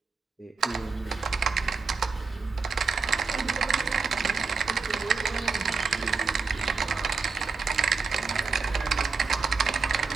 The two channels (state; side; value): quieter; left; 4.9 dB